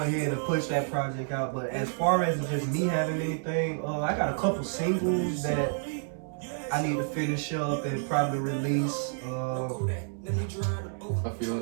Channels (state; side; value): silent; left; digital silence